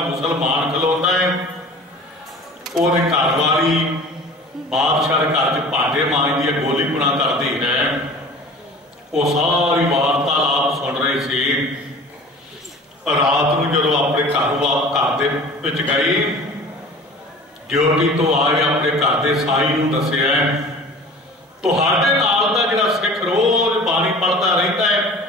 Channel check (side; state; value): both; normal; correlation 0.42